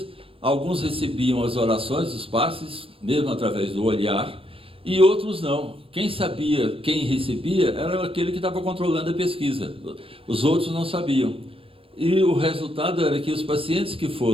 alguns recebiam as orações, os passes, mesmo através do olhar, e outros não. Quem sabia, quem recebia, era aquele que estava controlando a pesquisa. Os outros não sabiam. E o resultado era que os pacientes que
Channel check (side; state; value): left; late; 0.27 ms